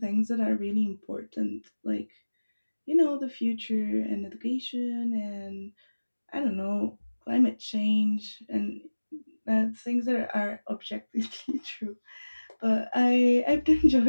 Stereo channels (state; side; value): inverted; both; correlation -1.00